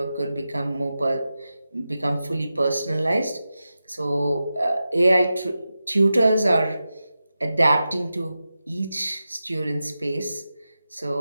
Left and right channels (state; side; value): inverted; both; correlation -0.92